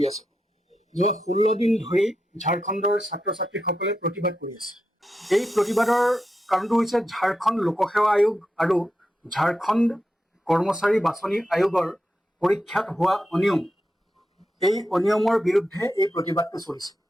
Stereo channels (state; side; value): normal; both; correlation 0.87